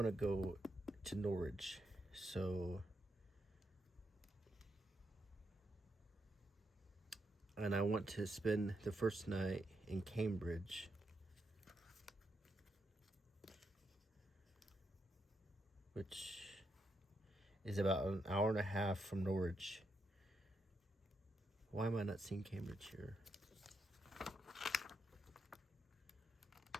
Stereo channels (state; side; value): normal; both; correlation 0.81